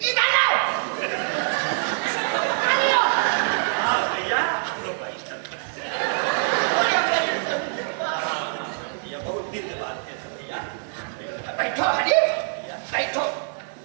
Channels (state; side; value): silent; left; digital silence